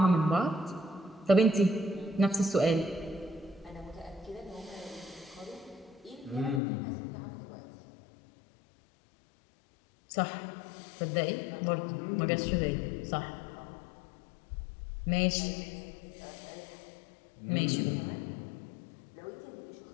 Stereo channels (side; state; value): right; drops out; at 6.6 s